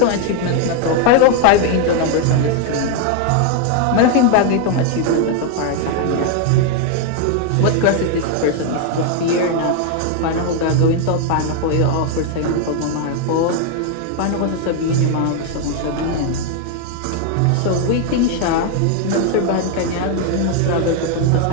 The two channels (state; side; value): different; both; correlation 0.00